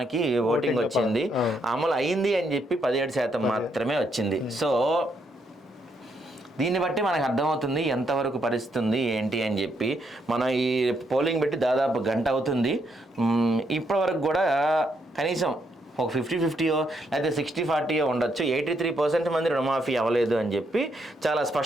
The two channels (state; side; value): normal; both; correlation 0.76